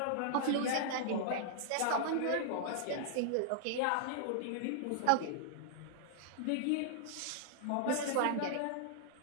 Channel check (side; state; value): both; different; correlation -0.01